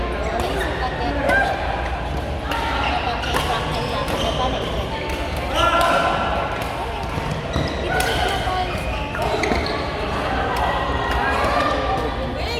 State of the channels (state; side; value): identical; both; correlation 1.00